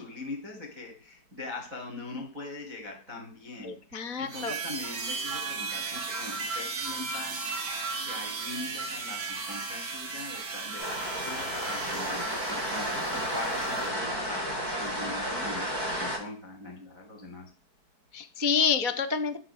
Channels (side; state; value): left; late; 4.6 ms